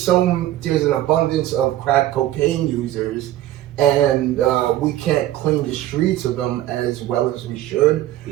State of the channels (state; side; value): quieter; left; 13.9 dB